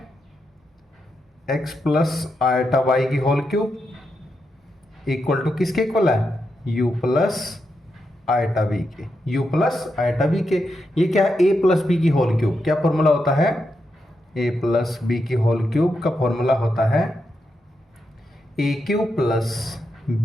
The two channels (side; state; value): both; normal; correlation 0.85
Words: x प्लस आयटा वाई की होल क्यूब इक्वल टू किसके इक्वल है? u प्लस आयटा बी के। u प्लस आयटा बी के ये क्या है? a प्लस बी की होल क्यूब। क्या फॉर्मूला होता है? a प्लस बी की होल क्यूब का फॉर्मूला होता है a cube plus